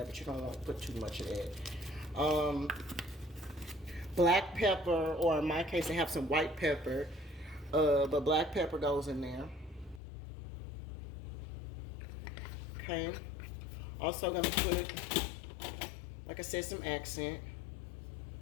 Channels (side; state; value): right; drops out; at 10.0 s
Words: but you don't want to put too much of that. Black pepper, or in my case, I have some white pepper, but black pepper goes in there. Okay. Also gonna put, like I said, some accent.